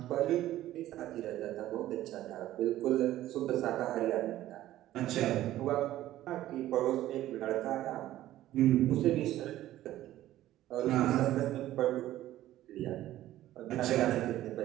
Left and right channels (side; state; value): left; quieter; 14.1 dB